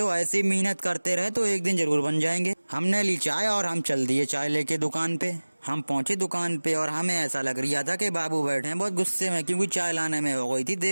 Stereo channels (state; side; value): inverted; both; correlation -1.00